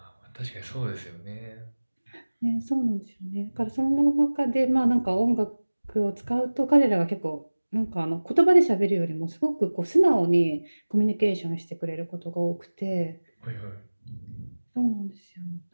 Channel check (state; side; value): inverted; both; correlation -1.00